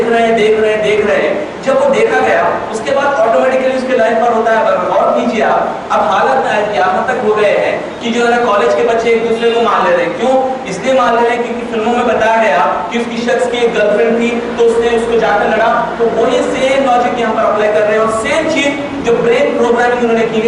رہے ہیں, جب وہ دیکھا گیا اس کے بعد آٹومیٹکلی اس کے لائف پر ہوتا ہے. غور کیجیے آپ, اب حالت یہاں تک ہو گئے ہیں کہ جو ہے نا کالج کے بچے ایک دوسرے کو مار لے رہے ہیں. کیوں؟ اس لیے مار لے رہے ہیں کیونکہ فلموں میں بتایا گیا کہ اس کی شخص کی ایک گرل فرینڈ تھی تو اس نے اس کو جا کر لڑا. تو وہی سیم لاجک یہاں پر اپلائی کر رہے ہیں, اور سیم چیز جو برین پروگرامنگ انہوں نے کی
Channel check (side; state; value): both; identical; correlation 1.00